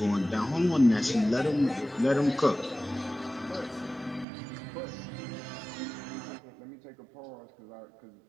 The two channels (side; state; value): left; drops out; at 4.2 s